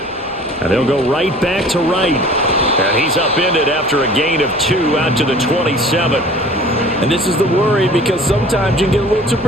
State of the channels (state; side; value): normal; both; correlation 0.47